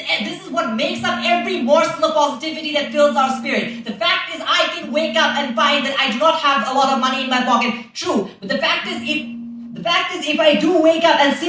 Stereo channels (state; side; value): identical; both; correlation 1.00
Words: what makes up every morsel of positivity that fills our spirit. The fact is, I can wake up and find that I do not have a lot of money in my pocket. True, but the fact is, if I do wake up and